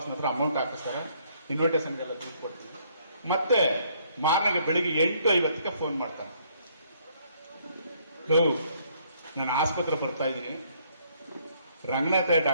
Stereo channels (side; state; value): both; inverted; correlation -0.66